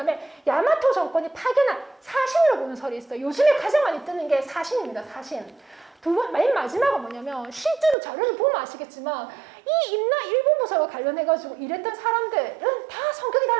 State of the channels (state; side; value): drops out; left; at 8.0 s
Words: 야마토 정권이 파견한 사신으로 보는 설이 있어요. 요즘에 가장 많이 뜨는 게 사신입니다. 사신. 맨 마지막은 뭐냐면 실제로 자료를 보면 아시겠지만 이 임나 일본 부설과 관련해가지고 이랬던 사람들은 다 성격이